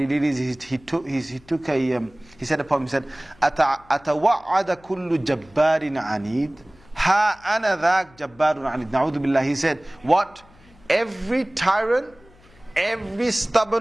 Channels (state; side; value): noise; left; hum, 27 dB below the sound